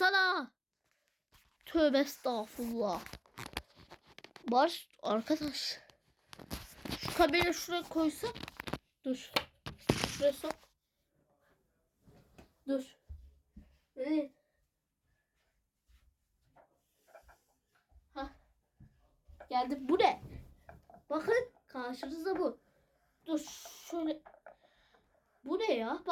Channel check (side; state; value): both; identical; correlation 1.00